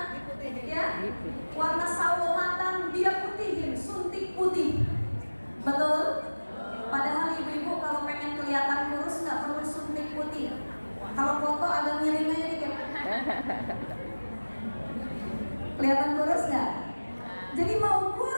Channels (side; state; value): both; inverted; correlation -1.00